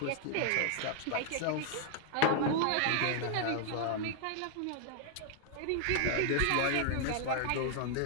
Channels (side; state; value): both; different; correlation 0.00